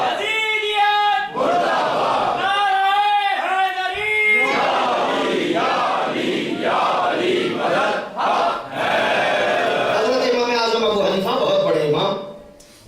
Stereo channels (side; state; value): both; identical; correlation 1.00